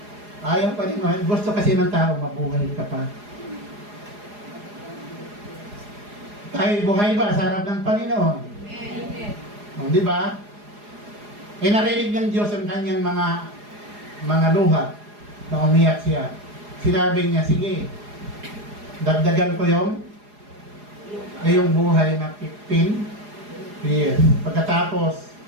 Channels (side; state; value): left; late; 4.8 ms